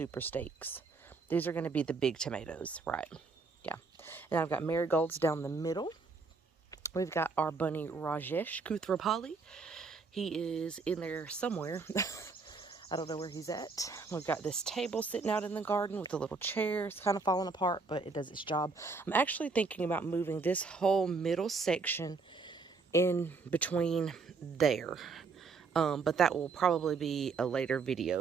steaks. These are going to be the big tomatoes, right? Yeah. And I've got marigolds down the middle. We've got our bunny Rajesh Kuthrapali. He is in there somewhere. I don't know where he's at. We've got this table sitting out in the garden with a little chair. It's kind of falling apart, but it does its job. I'm actually thinking about moving this whole middle section in between there. But that will probably be a later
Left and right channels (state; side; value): quieter; left; 4.4 dB